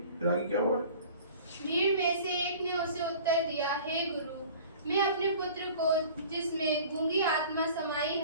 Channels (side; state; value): both; inverted; correlation -0.45